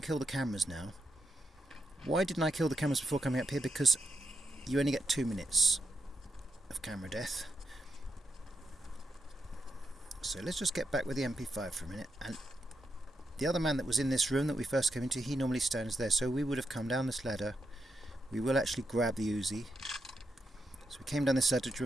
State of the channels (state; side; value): normal; both; correlation 0.84